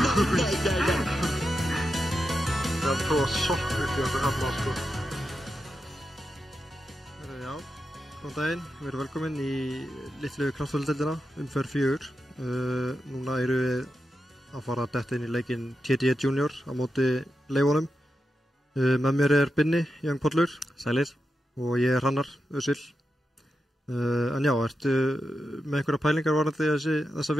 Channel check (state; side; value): normal; both; correlation 0.88